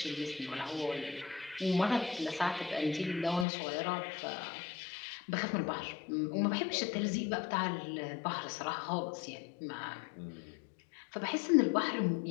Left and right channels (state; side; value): drops out; right; at 3.5 s